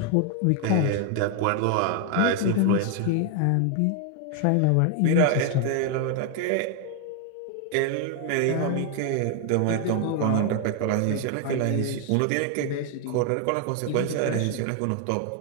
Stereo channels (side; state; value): both; different; correlation 0.01